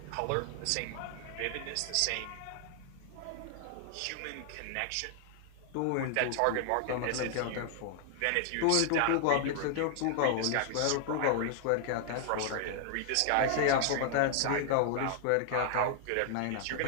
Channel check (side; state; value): both; different; correlation 0.00